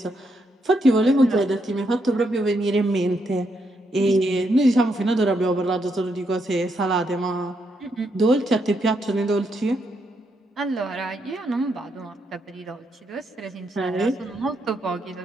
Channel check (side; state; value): both; normal; correlation 0.78